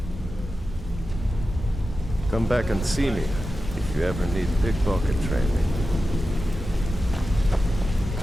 Come back and see me if you ever need pickpocket training.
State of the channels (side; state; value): both; normal; correlation 0.92